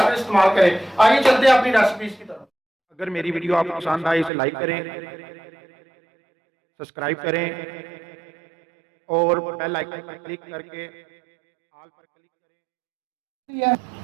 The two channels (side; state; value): left; drops out; at 4.3 s